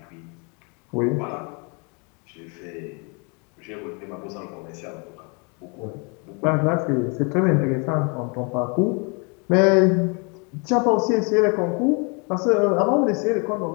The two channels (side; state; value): right; quieter; 33.5 dB